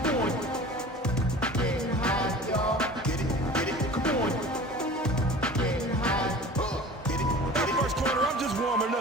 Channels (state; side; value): normal; both; correlation 0.40